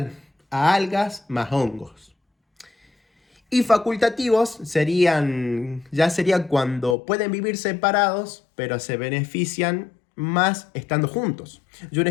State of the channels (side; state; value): right; drops out; at 7.0 s